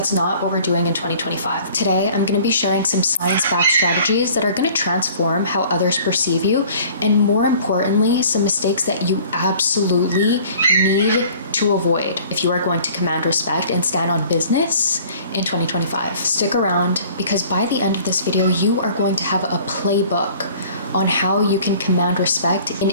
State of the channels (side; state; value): both; inverted; correlation -0.50